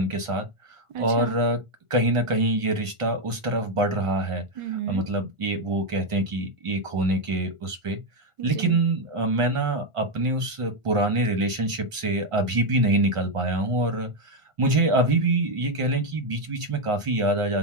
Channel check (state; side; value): late; left; 1.5 ms